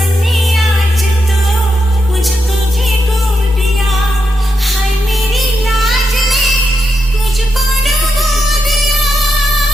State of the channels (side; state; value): both; normal; correlation 0.84